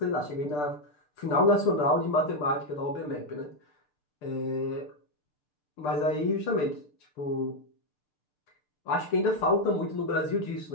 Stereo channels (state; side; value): late; right; 6.7 ms